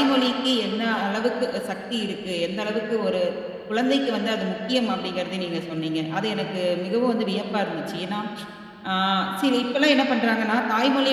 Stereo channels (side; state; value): both; identical; correlation 1.00